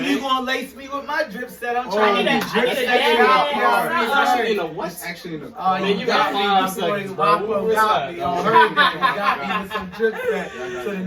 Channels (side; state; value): both; identical; correlation 1.00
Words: man. you gonna lace me with my Dripset? I'm Oh, trying I to need be a- I need a Dripset dad. out Yeah. here. Especially in a what? It's actually in the Oh, car. Man, you got me. 5 My boy seconds, bro. Wapo What's got that? me. Y'all heard that. You got me with some Dripset. So the